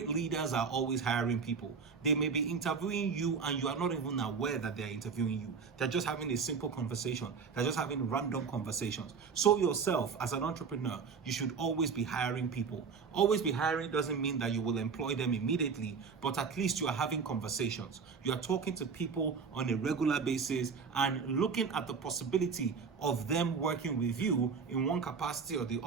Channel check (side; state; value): left; quieter; 5.6 dB